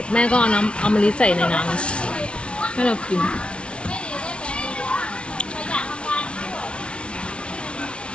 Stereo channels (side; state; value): right; late; 0.059 ms